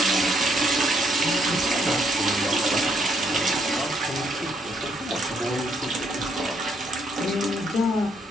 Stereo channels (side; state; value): both; normal; correlation 0.72